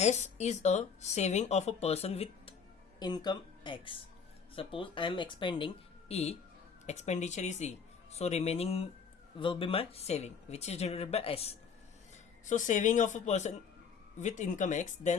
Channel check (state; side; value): quieter; right; 6.2 dB